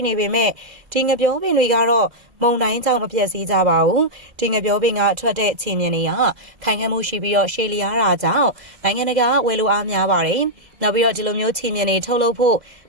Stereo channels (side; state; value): left; late; 2.0 ms